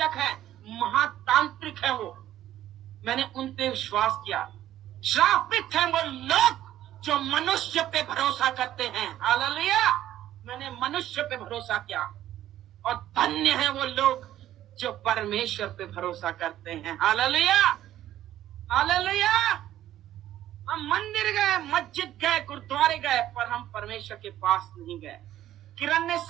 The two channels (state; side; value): quieter; left; 12.7 dB